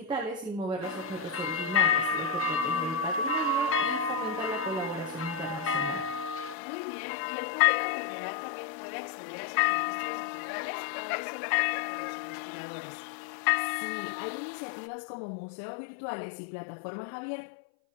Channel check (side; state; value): right; drops out; at 6.6 s